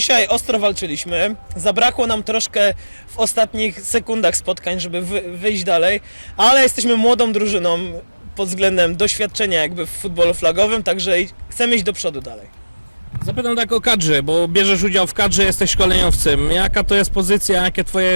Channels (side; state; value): both; inverted; correlation -1.00